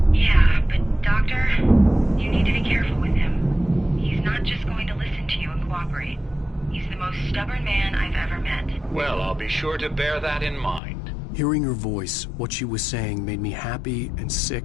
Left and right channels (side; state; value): right; drops out; at 10.8 s